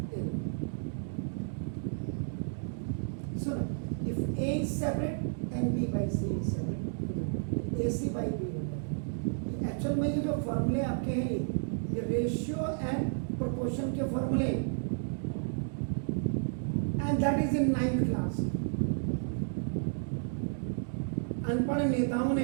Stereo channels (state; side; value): silent; left; digital silence